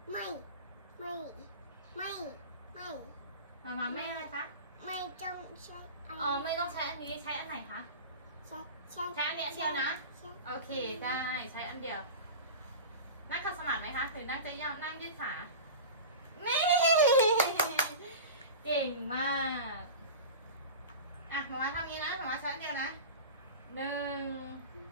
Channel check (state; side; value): inverted; both; correlation -0.31